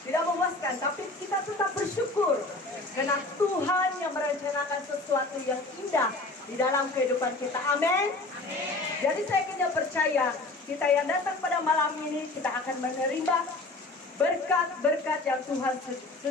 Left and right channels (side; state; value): right; quieter; 3.0 dB